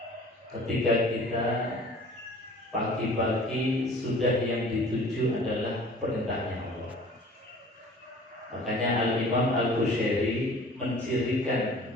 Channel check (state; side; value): normal; both; correlation 0.47